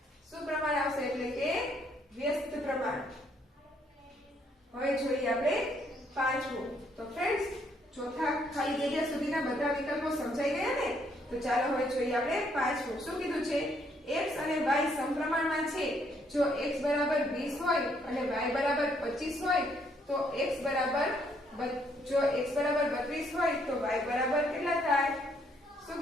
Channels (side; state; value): both; normal; correlation 0.70